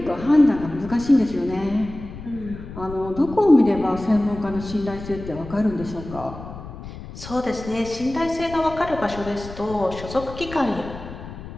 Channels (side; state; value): left; noise; rumble, 13 dB below the sound